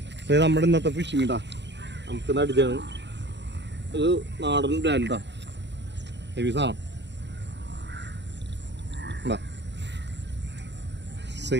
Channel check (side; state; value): left; late; 0.51 ms